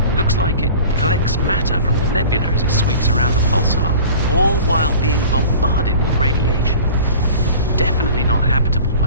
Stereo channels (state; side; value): inverted; both; correlation -0.41